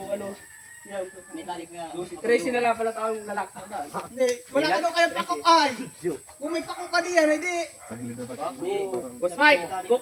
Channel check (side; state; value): both; identical; correlation 1.00